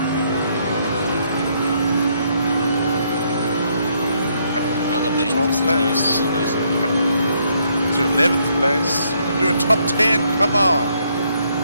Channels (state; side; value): inverted; both; correlation -0.72